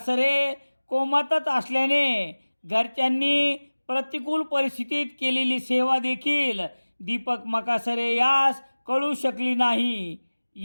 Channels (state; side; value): inverted; both; correlation -1.00